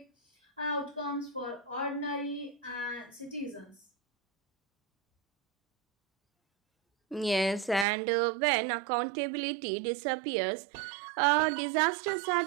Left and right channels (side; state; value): left; drops out; at 7.9 s